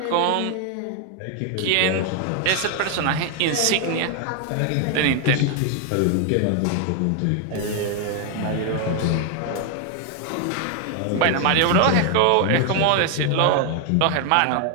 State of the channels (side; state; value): both; different; correlation 0.00